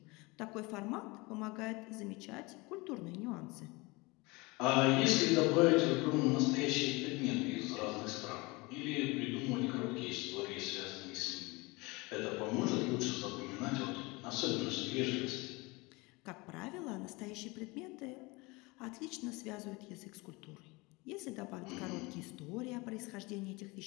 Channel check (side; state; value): right; quieter; 24.7 dB